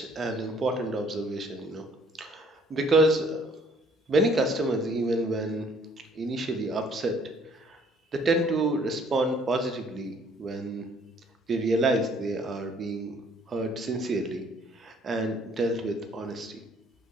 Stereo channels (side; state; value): both; normal; correlation 0.60